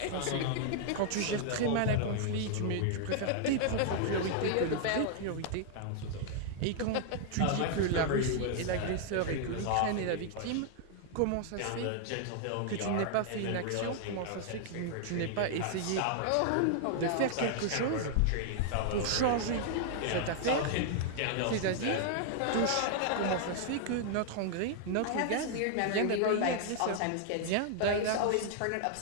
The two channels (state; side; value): different; both; correlation 0.00